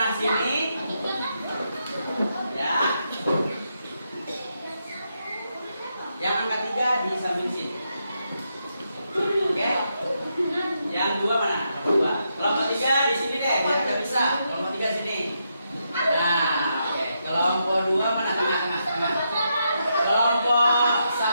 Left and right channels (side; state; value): both; inverted; correlation -0.82